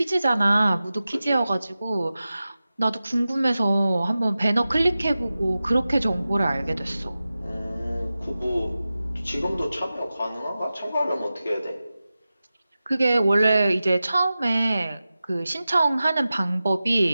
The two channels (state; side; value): inverted; both; correlation -0.95